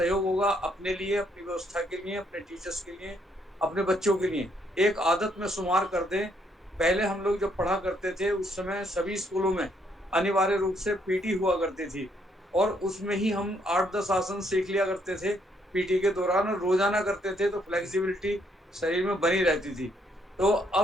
होगा अपने लिए, अपनी व्यवस्था के लिए, अपने टीचर्स के लिए, अपने बच्चों के लिए। एक आदत में शुमार कर दें। पहले हम लोग जब पढ़ा करते थे उस समय सभी स्कूलों में अनिवार्य रूप से पीटी हुआ करती थी और उसमें ही हम 8-10 आसन सीख लिया करते थे पीटी के दौरान और रोजाना करते थे, तो फ्लेक्सिबिलिटी शरीर में बनी रहती थी। तो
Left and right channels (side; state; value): both; normal; correlation 0.71